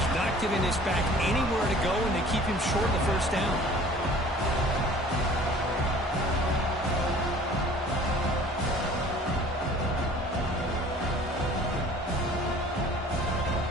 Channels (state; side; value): normal; both; correlation 0.49